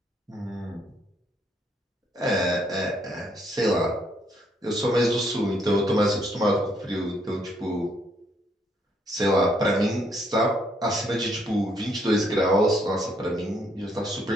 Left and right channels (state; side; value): normal; both; correlation 0.71